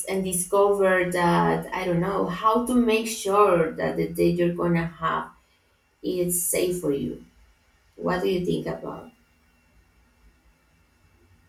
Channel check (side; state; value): both; identical; correlation 1.00